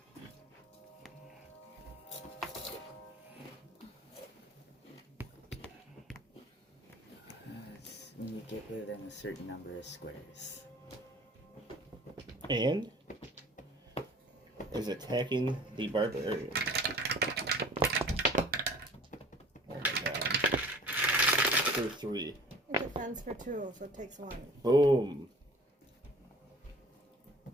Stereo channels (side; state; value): both; normal; correlation 0.48